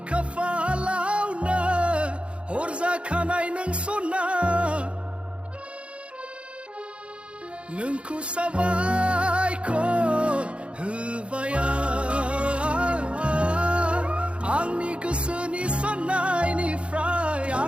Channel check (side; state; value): left; late; 0.059 ms